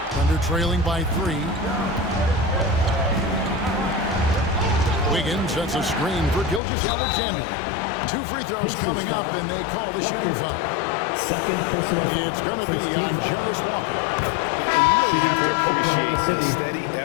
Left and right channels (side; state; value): right; drops out; at 6.6 s